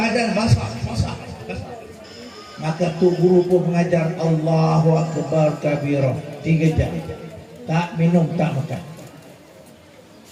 basah. Maka Tuan Guru pun mengajar Allahu Akbar kabira 3 jam. Tak minum, tak makan.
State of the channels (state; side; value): identical; both; correlation 1.00